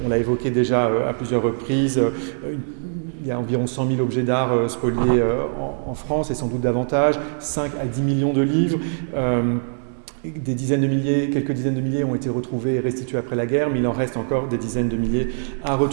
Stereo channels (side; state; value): left; silent; digital silence